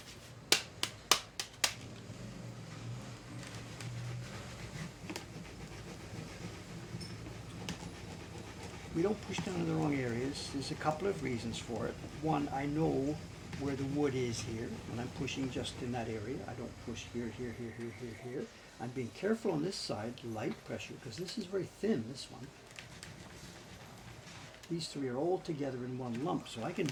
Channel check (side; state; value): both; identical; correlation 1.00